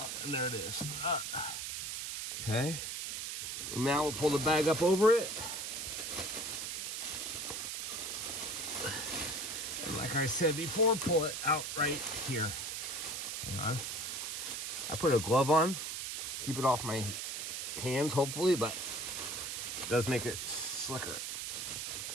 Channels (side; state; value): right; noise; hiss, 4 dB below the sound